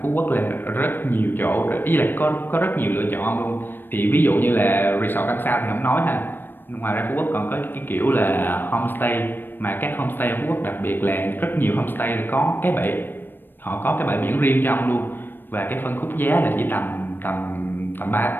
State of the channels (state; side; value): late; right; 0.095 ms